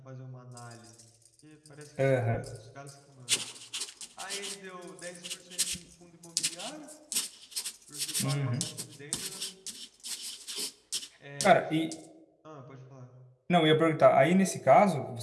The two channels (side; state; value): both; identical; correlation 1.00